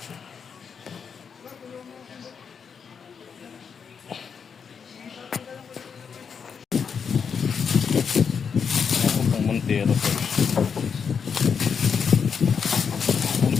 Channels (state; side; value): quieter; right; 6.5 dB